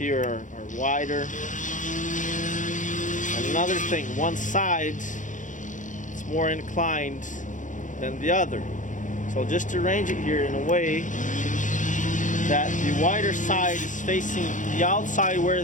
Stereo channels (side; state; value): right; late; 0.37 ms